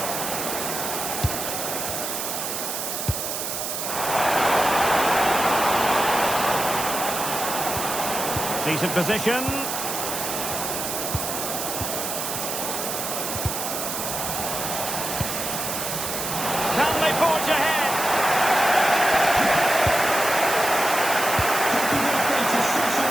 Decent position. Can they forge ahead?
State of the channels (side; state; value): right; noise; hiss, 3 dB below the sound